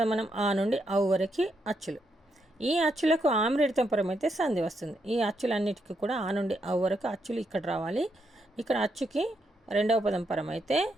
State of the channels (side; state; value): both; normal; correlation 0.79